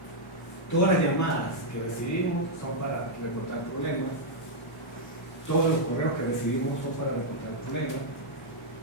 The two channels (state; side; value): normal; both; correlation -0.04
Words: Todas las llamadas que recibimos son para reportar problemas, todos los correos que recibimos son para reportar el problema.